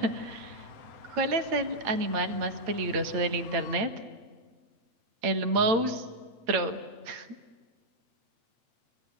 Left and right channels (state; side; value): late; left; 8.9 ms